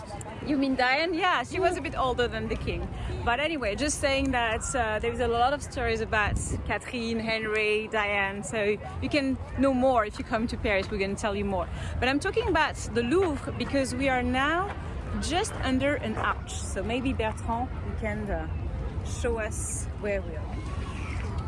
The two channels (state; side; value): identical; both; correlation 1.00